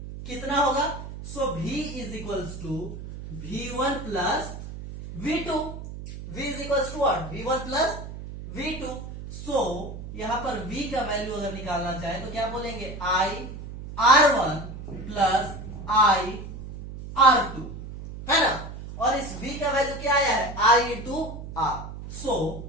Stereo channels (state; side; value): noise; right; hum, 10 dB below the sound